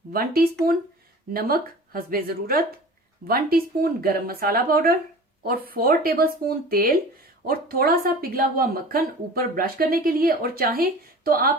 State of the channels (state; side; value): normal; both; correlation 0.40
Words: 1 टीस्पून, नमक हस्बे जरूरत, 1 टीस्पून गरम मसाला पाउडर और 4 टेबल स्पून तेल और थोड़ा सा पिघला हुआ मक्खन ऊपर ब्रश करने के लिए। और चाहे तो